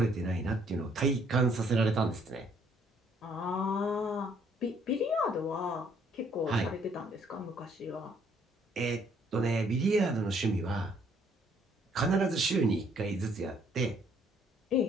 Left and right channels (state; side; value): normal; both; correlation 0.65